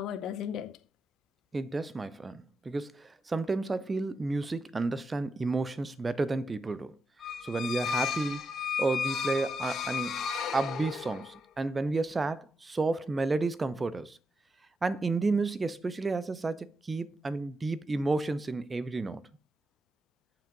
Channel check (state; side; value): normal; both; correlation 0.85